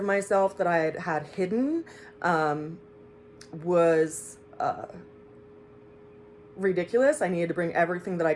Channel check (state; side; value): identical; both; correlation 1.00